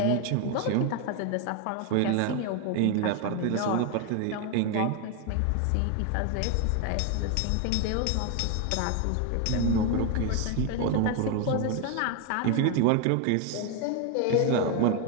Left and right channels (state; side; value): different; both; correlation 0.01